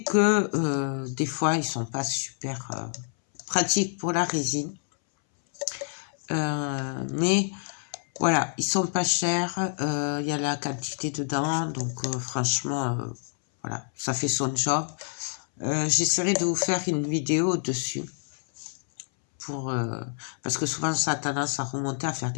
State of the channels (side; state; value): right; silent; 60 dB below the other